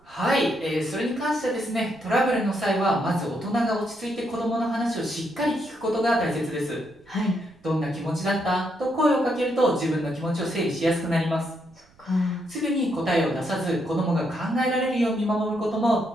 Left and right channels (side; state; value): right; noise; rumble, 30 dB below the sound